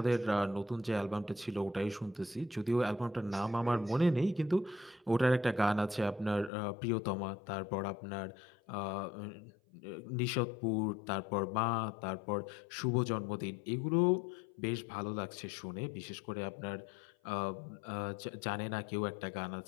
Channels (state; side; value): drops out; right; at 6.5 s